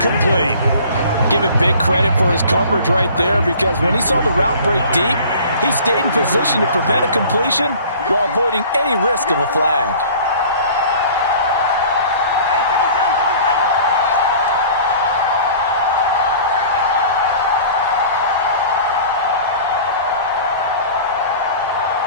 Give it big credit for his coverage right there, because when he saw the route break deep, he stayed in position to prevent a completion while avoiding any risk of a flag.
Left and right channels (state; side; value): inverted; both; correlation -0.45